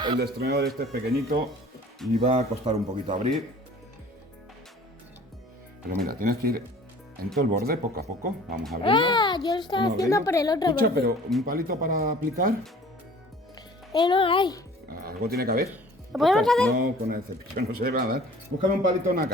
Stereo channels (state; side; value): normal; both; correlation 0.49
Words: el destornillador este es pequeñito y va a costar un poquito abrir. Pero mira, tienes que ir en todo el borde, poco a poco. Vamos a abrirlo. Ah, yo lo estaba Vamos a haciendo abrirlo. por el otro Escucha, borde. pero un palito para aplicar, No hay. algo tiene que haber. ¿Lo podemos hacer? No, con el cepillo no se va a dar. Búscame un palito en la